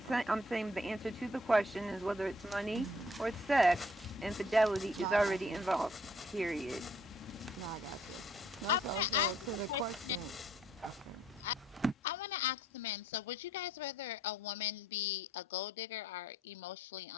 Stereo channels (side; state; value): both; normal; correlation 0.63